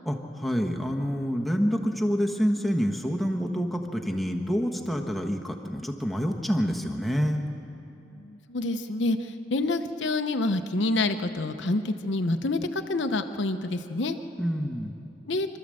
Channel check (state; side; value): normal; both; correlation 0.77